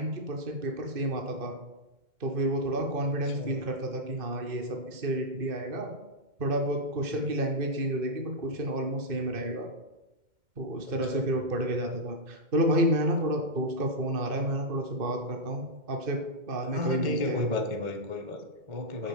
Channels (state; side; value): late; left; 2.1 ms